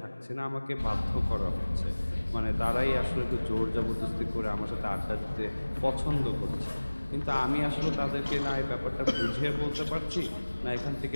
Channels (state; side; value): inverted; both; correlation -1.00